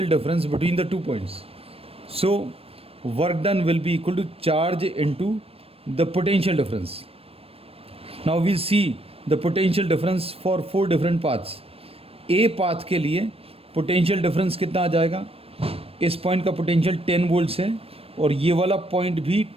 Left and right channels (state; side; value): late; left; 0.28 ms